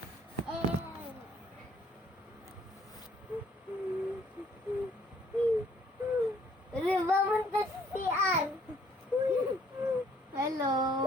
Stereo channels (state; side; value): normal; both; correlation 0.62